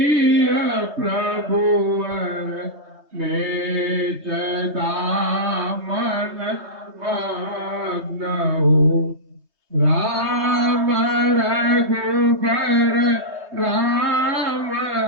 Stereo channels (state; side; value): late; left; 3.2 ms